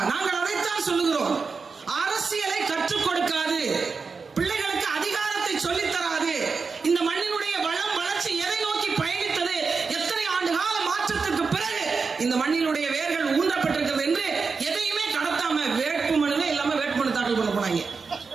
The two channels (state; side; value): quieter; left; 4.8 dB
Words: நாங்கள் அதைத்தான் சொல்லுகிறோம். அரசியலை கற்றுக் கொடுக்காது, பிள்ளைகளுக்கு அதிகாரத்தை சொல்லித் தராது. இந்த மண்ணினுடைய வளம் வளர்ச்சி எதை நோக்கி பயணித்தது, எத்தனை ஆண்டு கால மாற்றத்திற்கு பிறகு இந்த மண்ணினுடைய வேர்கள் ஊன்றப்பட்டிருக்கிறது என்று எதையுமே கடத்தாம வேட்புமனுவே இல்லாம வேட்புமனு தாக்கல் பண்ண போனாங்க.